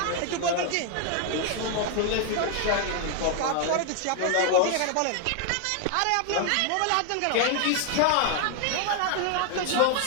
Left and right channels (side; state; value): both; different; correlation 0.00